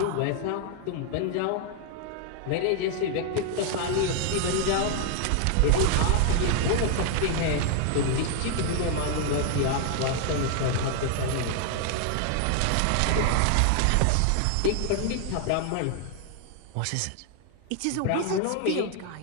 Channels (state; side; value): different; both; correlation 0.00